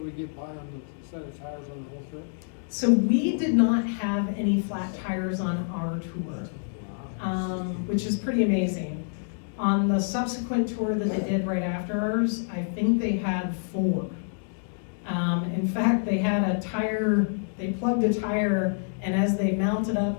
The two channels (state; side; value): silent; right; digital silence